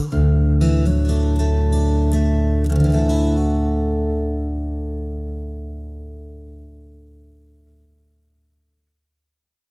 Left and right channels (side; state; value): both; identical; correlation 1.00